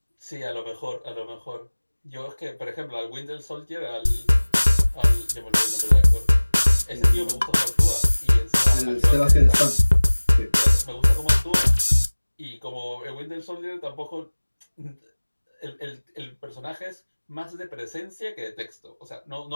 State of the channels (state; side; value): inverted; both; correlation -1.00